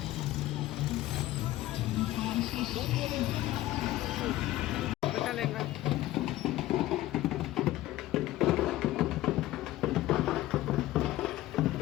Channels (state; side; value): quieter; right; 15.8 dB